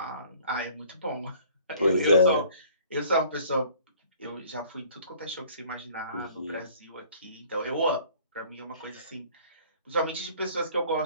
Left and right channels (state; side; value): inverted; both; correlation -0.53